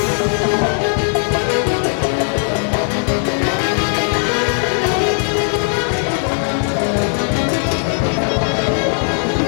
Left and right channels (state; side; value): silent; right; 59 dB below the other